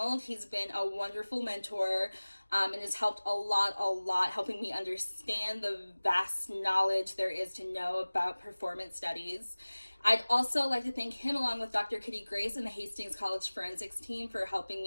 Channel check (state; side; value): inverted; both; correlation -1.00